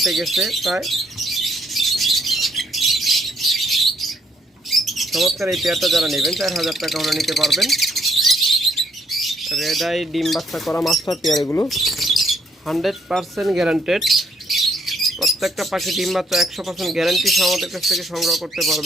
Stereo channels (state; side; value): normal; both; correlation 0.70